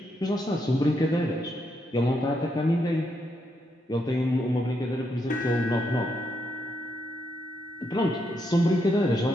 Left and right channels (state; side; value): normal; both; correlation 0.79